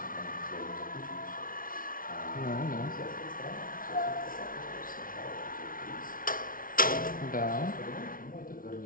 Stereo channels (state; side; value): late; right; 0.41 ms